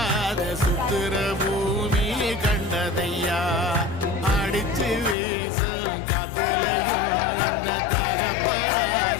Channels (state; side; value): drops out; right; at 5.2 s